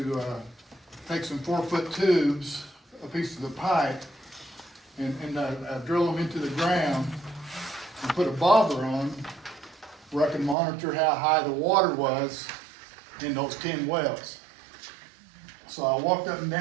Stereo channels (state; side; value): drops out; left; at 10.6 s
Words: take some 4-foot tubes, a piece of the pipe, and drill them into the ground and put a bobber on where I can monitor how high the water was in those 10 wells. So I walked up and